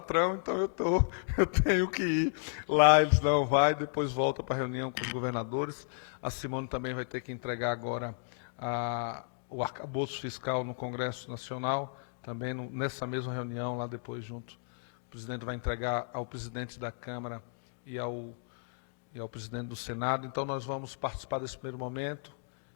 então eu tenho que ir lá. Eles não vai, depois volta para a reunião com os governadores. A Simone também vai ter que entregar agora o arcabouço fiscal no Congresso Nacional, também nessa mesma reunião, lá depois junto. O presidente vai entregar ao presidente da Câmara e ao presidente do Senado. Então, nós vamos participar desse primeiro momento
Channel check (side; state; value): right; silent; digital silence